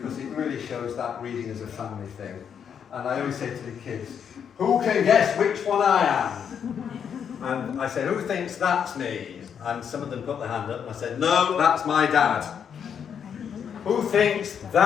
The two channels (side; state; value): right; quieter; 7.8 dB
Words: it really shows that reading as a family thing. And I always say to the kids, who can guess which one I am? And I say, who thinks that's me? And some of them put their hand up, and I said, no, that's my dad. Who thinks